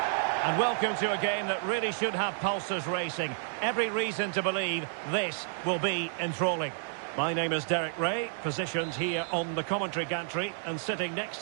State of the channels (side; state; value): left; silent; digital silence